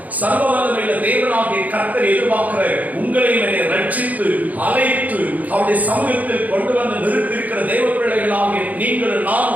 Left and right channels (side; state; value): left; late; 0.077 ms